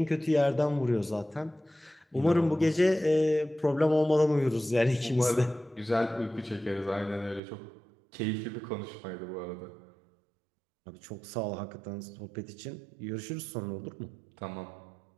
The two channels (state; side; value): drops out; left; at 7.4 s